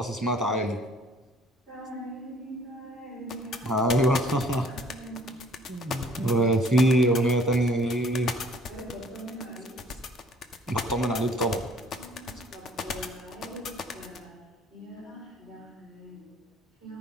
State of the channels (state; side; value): normal; both; correlation 0.56